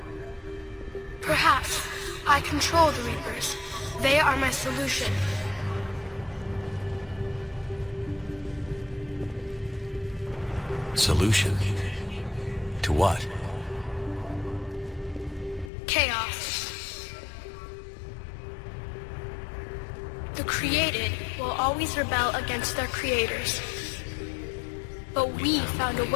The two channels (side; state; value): right; drops out; at 15.7 s